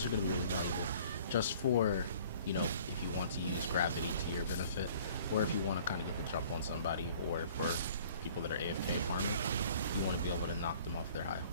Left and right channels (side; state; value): both; inverted; correlation -0.52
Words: are going to be really valuable just for, if you want to use gravity to your benefit, or if you want to kind of get the jump on somebody, or for people that are AFK farming, you want to be able to knock them off their high